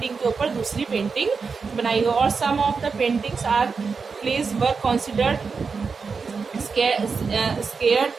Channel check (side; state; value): left; quieter; 5.1 dB